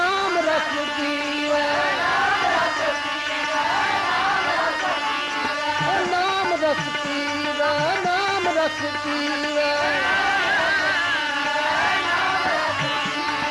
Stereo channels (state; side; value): identical; both; correlation 1.00